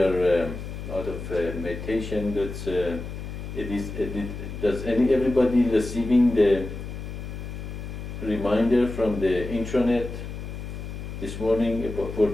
out of meditation, does everybody receiving the reminder from the intranet this morning for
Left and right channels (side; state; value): left; noise; hum, 8 dB below the sound